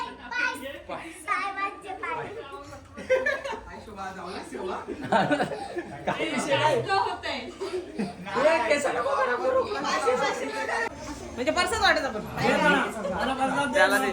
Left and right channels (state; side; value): identical; both; correlation 1.00